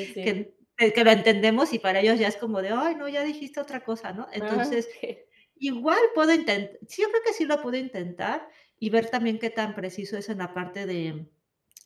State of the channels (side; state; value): both; identical; correlation 1.00